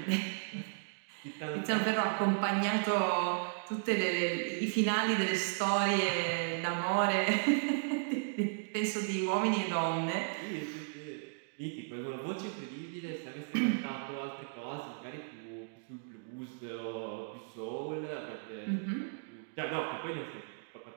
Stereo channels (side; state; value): left; silent; digital silence